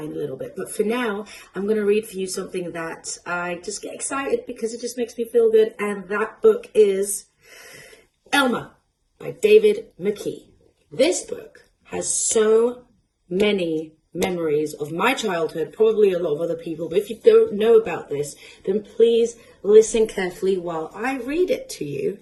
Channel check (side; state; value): both; identical; correlation 1.00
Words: in a little bit, but for now, I'm going to read for you something that I just get excited because it just makes me feel good, and that book is Elmer by David McKee. This book has so many memories of my childhood, probably a lot of other people, but if you don't know about this, then please listen carefully while I read it to you,